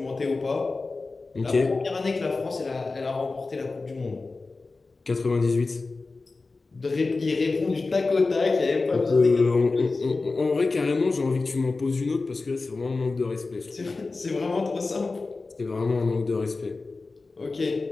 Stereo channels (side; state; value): right; quieter; 3.7 dB